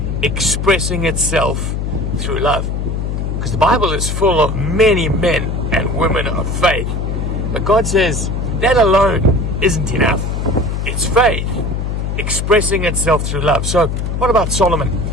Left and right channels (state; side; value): noise; left; hum, 2 dB below the sound